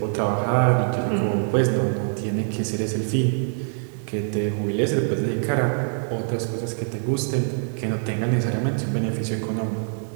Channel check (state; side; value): silent; left; 62 dB below the other